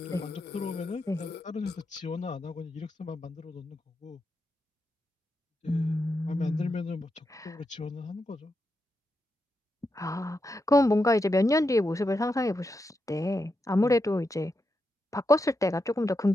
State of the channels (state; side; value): normal; both; correlation 0.86